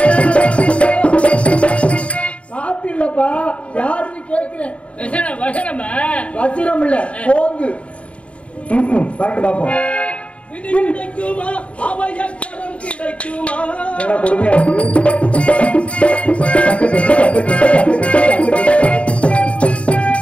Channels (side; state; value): right; late; 0.063 ms